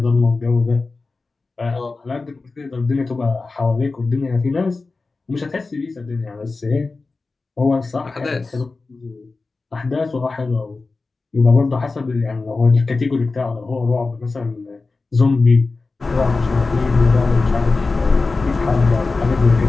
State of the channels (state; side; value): quieter; right; 3.8 dB